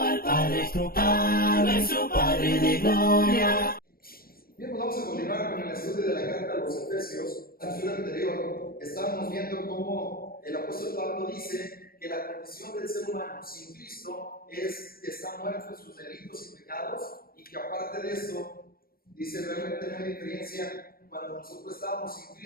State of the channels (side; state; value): right; late; 0.43 ms